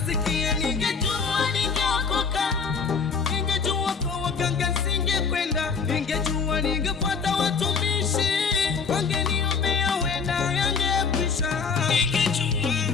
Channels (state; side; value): quieter; right; 5.5 dB